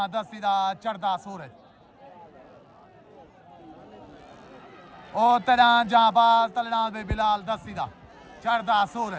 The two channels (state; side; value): identical; both; correlation 1.00